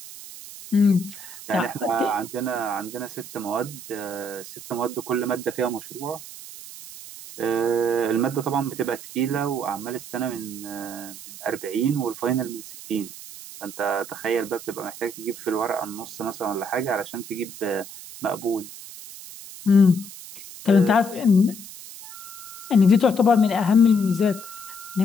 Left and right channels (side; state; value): right; noise; hiss, 14 dB below the sound